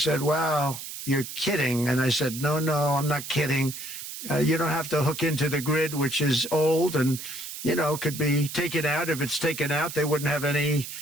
wow, you're kidding. And I said, no, I'm not kidding. You don't have to hook into the grid, which is old and, could be taken out. If it's taken out, they wouldn't have any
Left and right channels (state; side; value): noise; right; hiss, 9 dB below the sound